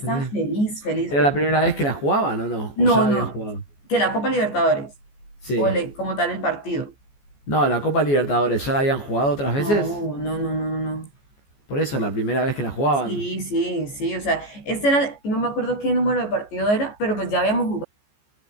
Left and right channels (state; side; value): late; right; 14 ms